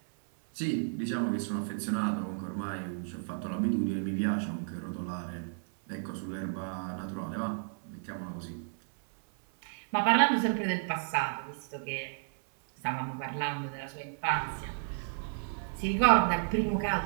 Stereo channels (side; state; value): left; silent; 56 dB below the other